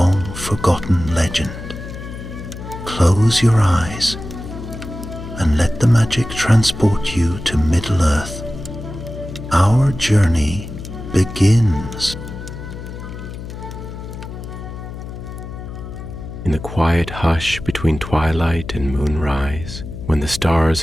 legend. Close your eyes and let the magic transport you to Middle-earth. Our journey begins. In the quiet hush between twilight and moonrise, when the stars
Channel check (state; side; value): noise; left; hum, 10 dB below the sound